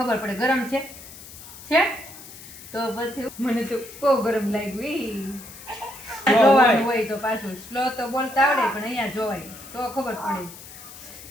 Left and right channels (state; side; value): noise; left; hiss, 16 dB below the sound